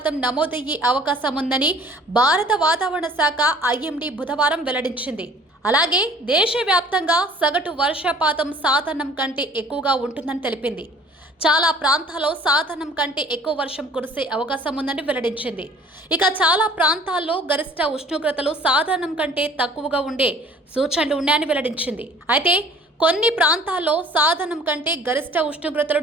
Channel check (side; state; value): both; normal; correlation 0.51